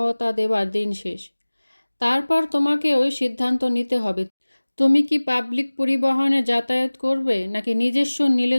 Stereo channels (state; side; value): inverted; both; correlation -1.00